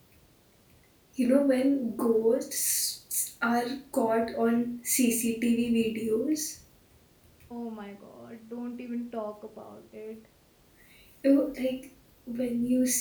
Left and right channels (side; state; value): both; identical; correlation 1.00